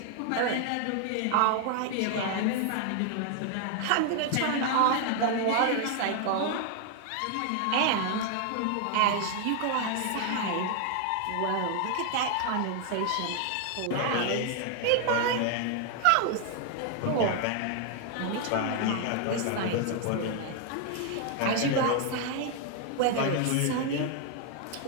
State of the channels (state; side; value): different; both; correlation 0.00